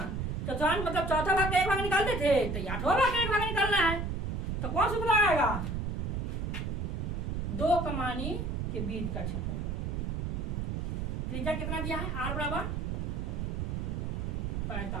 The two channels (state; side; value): noise; right; rumble, 2 dB below the sound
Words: चतुर्थांश मतलब चौथा भाग का एक भाग निकालते थे, तो 8वां भाग का एक भाग निकालना है। तो कौन सा सूत्र आएगा? 2 कमानी के बीच का क्षेत्रफल। त्रिज्या कितना दिया है? आर बराबर